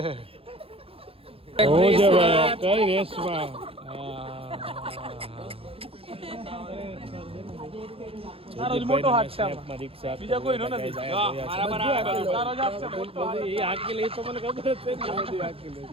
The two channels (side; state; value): left; late; 0.28 ms